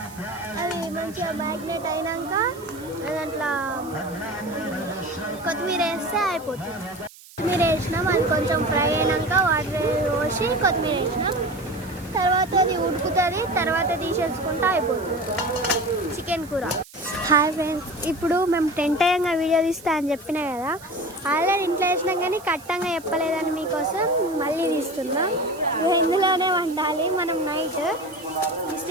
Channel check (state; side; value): noise; right; hiss, 21 dB below the sound